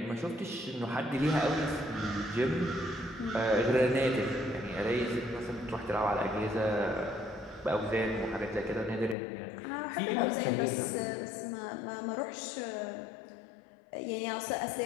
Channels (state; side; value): drops out; right; at 9.2 s